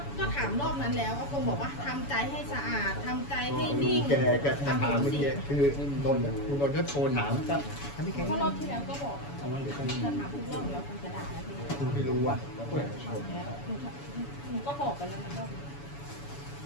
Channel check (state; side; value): late; right; 7.0 ms